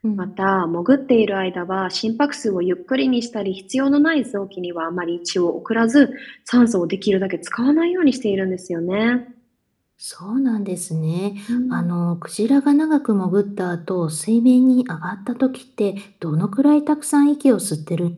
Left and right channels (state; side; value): identical; both; correlation 1.00